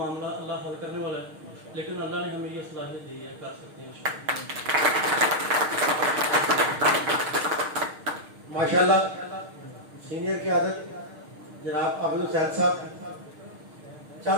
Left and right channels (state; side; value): late; left; 6.5 ms